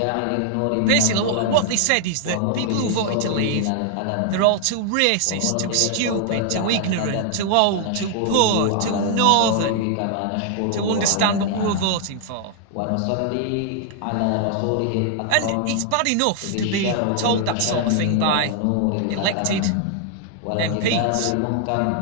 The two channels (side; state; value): both; different; correlation 0.00